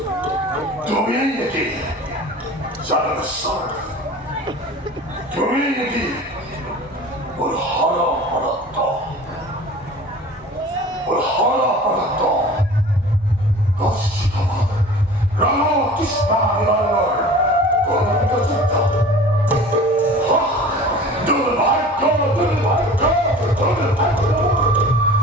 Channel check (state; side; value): normal; both; correlation 0.42